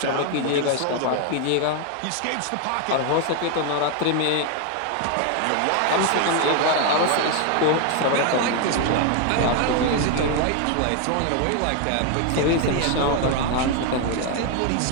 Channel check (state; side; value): different; both; correlation 0.01